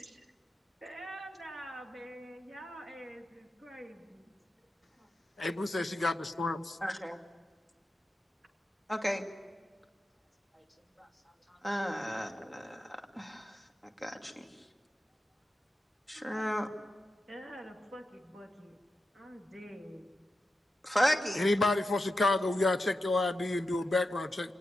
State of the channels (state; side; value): normal; both; correlation 0.90